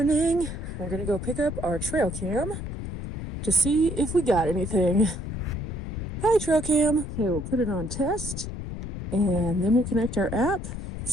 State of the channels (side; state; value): left; noise; rumble, 6 dB below the sound